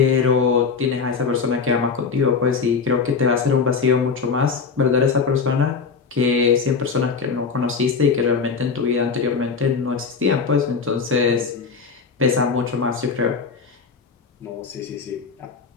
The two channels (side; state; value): right; quieter; 5.4 dB